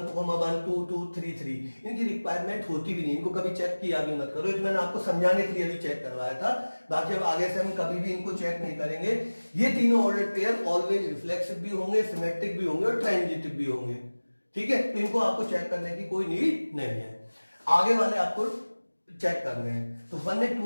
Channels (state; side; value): inverted; both; correlation -1.00